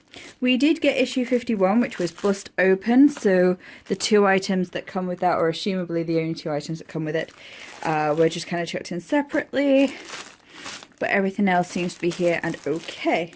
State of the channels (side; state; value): both; identical; correlation 1.00